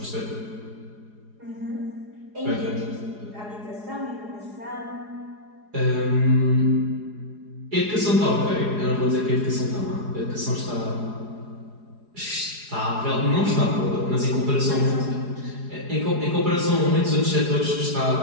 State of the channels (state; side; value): late; left; 4.8 ms